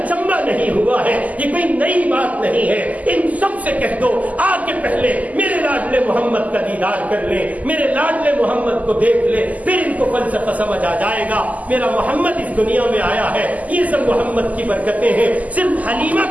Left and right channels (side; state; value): left; late; 0.076 ms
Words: نہیں ہوا ہے، یہ کوئی نئی بات نہیں ہے، ان سب سے کہہ دو آ کے پہلے میرے لاڈلے محمد کا دیدار کر لیں، میرے لاڈلے محمد کو دیکھ لیں، پھر ان کو فلسفہ سمجھ آ جائے گا۔ میرا محمد اس دنیا میں آیا ہے، یہ سب محمد کی برکتیں ہیں، صرف حلیمہ